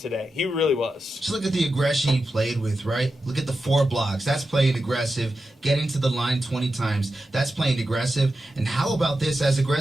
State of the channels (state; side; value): normal; both; correlation 0.90